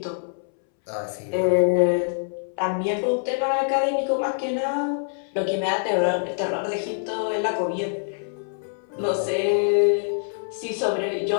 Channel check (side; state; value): right; silent; 62 dB below the other